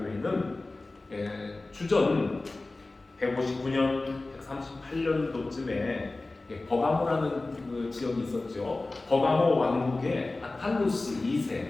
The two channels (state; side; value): quieter; right; 3.2 dB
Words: 주전 159년, 138년도쯤에 버가모라는 그 지역이 있었죠. 버가모 왕국의 아탈루스 2세,